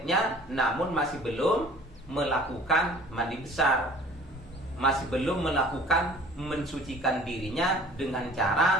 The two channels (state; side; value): normal; both; correlation 0.49